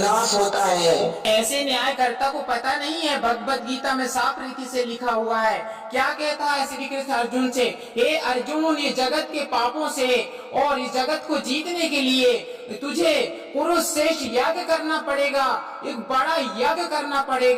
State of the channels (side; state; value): both; identical; correlation 1.00